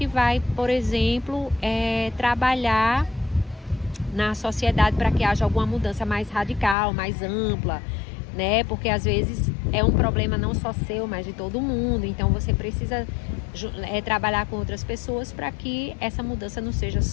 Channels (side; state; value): right; drops out; at 6.8 s